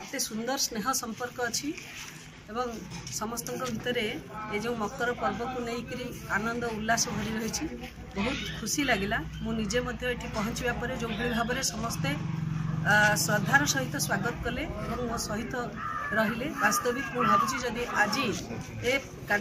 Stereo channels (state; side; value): identical; both; correlation 1.00